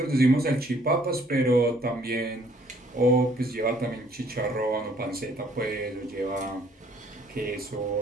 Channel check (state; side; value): normal; both; correlation 0.61